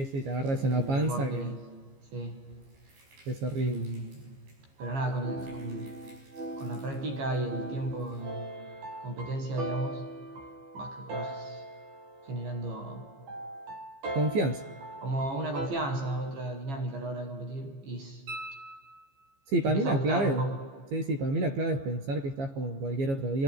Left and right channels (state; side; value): late; left; 15 ms